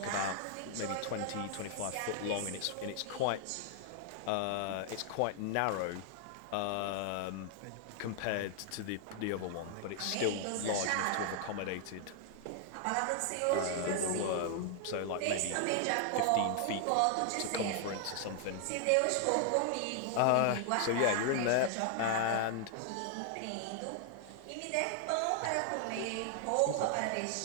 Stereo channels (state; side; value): different; both; correlation 0.00